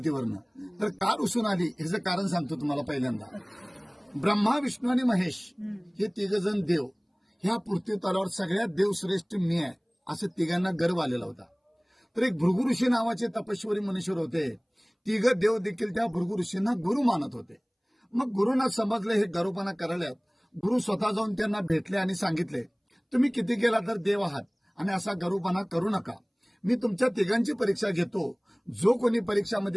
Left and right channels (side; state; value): both; identical; correlation 1.00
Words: तर का रुसून आली ह्याचं कारण सांगतो तुम्हाला. पहिल्यांदा ब्रह्मा, विष्णू आणि महेश हे तिघजण देव, ह्या पृथ्वी तलावर सगळ्यात देवश्रेष्ठ मी आहे असं तिघांना गर्व आलेला होता. तर एक भृगु ऋषी नावाचे तपस्वी मनुष्य होते. तिघ देव देखील त्या भृगु ऋषींना गुरु मानत होते. मग गुरुंना समजले हे गर्वपणा करायला. गुरु स्वतः जाऊन त्यांना भेटले आणि सांगितले, तुम्ही किती केला तर देव आहात आणि असा गर्वपणा करू नका. मी तुमच्या तिघांची परीक्षा घेतो. जो कोणी